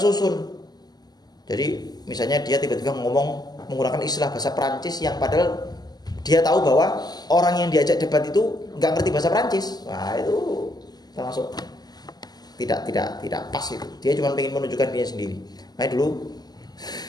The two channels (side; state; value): right; late; 0.20 ms